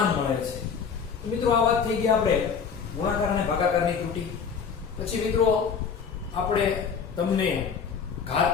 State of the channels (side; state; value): right; quieter; 6.4 dB